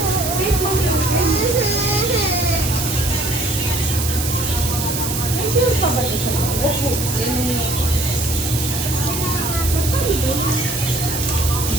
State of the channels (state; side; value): noise; right; hiss, 4 dB below the sound